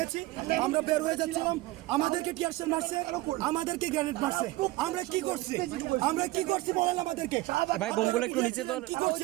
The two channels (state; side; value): quieter; left; 18.9 dB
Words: আমরা বের হয়ে যাচ্ছিলাম, আমাদেরকে টিয়ারশেল মারছে, আমাদেরকে গ্রেনেড মারছে। আমরা কি করছি, আমরা কি করছি বলেন আমাদেরকে। ভাই বোমগুলো একটু নিচে তো কি করছি